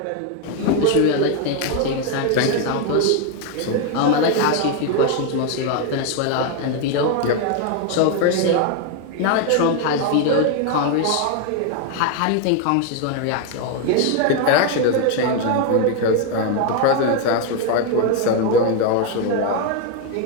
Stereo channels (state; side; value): different; both; correlation 0.01